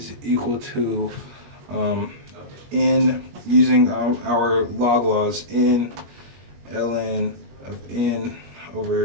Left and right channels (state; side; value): late; left; 21 ms